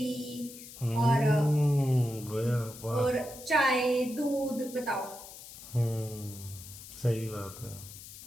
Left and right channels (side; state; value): left; noise; hiss, 15 dB below the sound